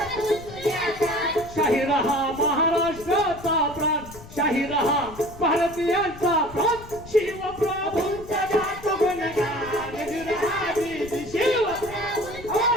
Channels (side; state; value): left; noise; rumble, 16 dB below the sound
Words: शाहीर हा महाराष्ट्राचा प्राण, शाहीर हा भारतीयांचा प्राण. शिवप्रभूंचा जात गुणगान विराजी, शिवप्रभूंचा